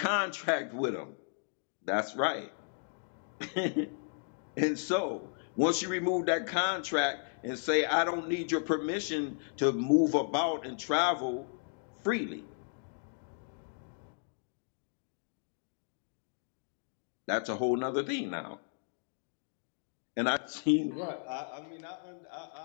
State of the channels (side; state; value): right; silent; 55 dB below the other